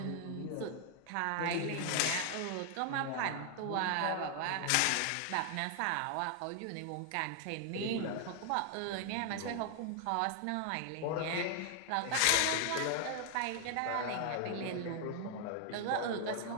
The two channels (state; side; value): different; both; correlation 0.00